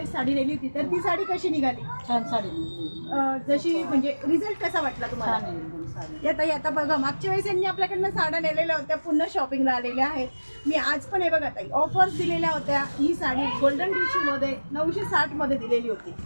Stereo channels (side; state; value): both; inverted; correlation -1.00